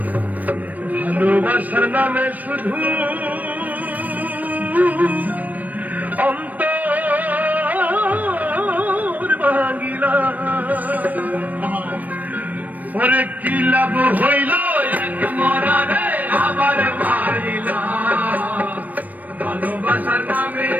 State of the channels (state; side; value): late; left; 0.079 ms